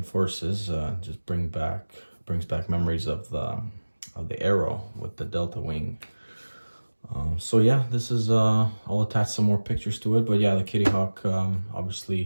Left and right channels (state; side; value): inverted; both; correlation -1.00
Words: Forces. Just brings back memories of the Arrow with the Delta Wing. So yeah, this is I'll attach some more pictures to it, but yeah, the Kitty Hawk,